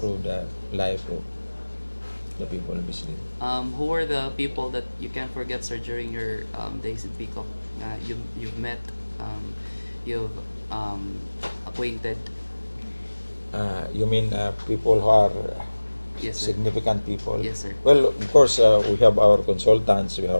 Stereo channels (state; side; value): inverted; both; correlation -1.00